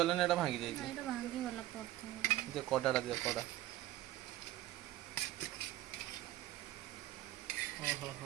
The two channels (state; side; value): quieter; left; 15.3 dB